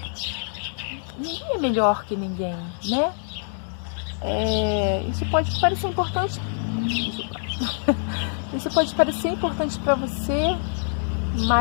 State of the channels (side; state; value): right; silent; digital silence